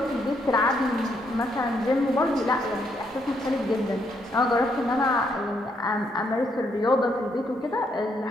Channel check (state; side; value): normal; both; correlation 0.74